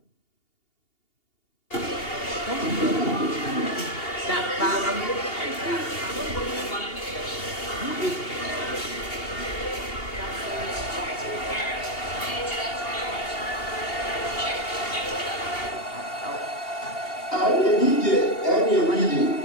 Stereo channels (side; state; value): right; late; 2.8 ms